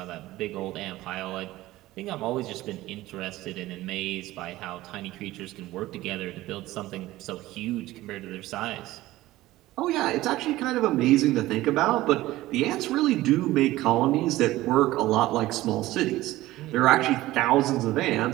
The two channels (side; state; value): left; quieter; 16.9 dB